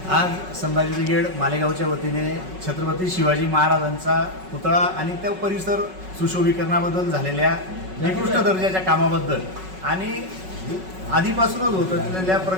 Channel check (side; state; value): left; late; 5.4 ms